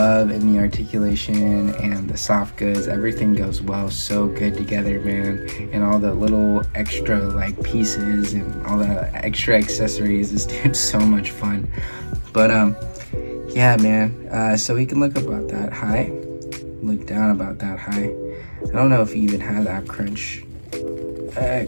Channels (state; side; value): inverted; both; correlation -1.00